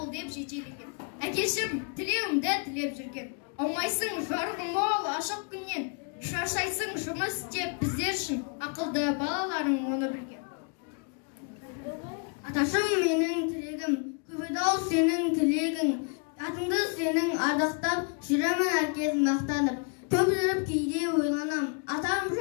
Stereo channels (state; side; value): quieter; right; 38.2 dB